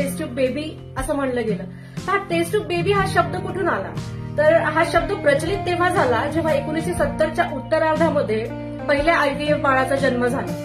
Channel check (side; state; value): both; identical; correlation 1.00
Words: ट्यूब बेबी असं म्हणलं गेलं. हा टेस्ट ट्यूब बेबी हा शब्द कुठून आला? तर हा शब्द प्रचलित तेव्हा झाला जेव्हा 1970च्या उत्तरार्धामध्ये पहिल्या IVF बाळाचा जन्म झाला.